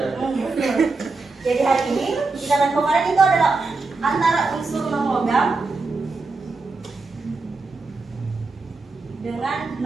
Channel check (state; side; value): quieter; left; 3.8 dB